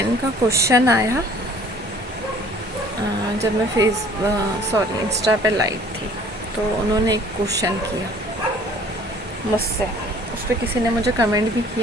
का क्वेश्चन आया जब मैं इंस्टा पे लाइव थी, तो उन्होंने एक क्वेश्चन किया मुझसे। उस पर किसी ने मुझे कमेंट भी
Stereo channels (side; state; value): both; normal; correlation 0.53